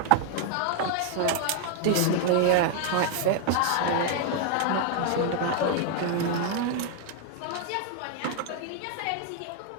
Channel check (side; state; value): both; different; correlation 0.00